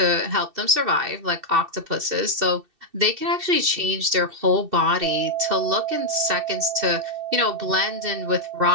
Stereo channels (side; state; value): left; late; 2.7 ms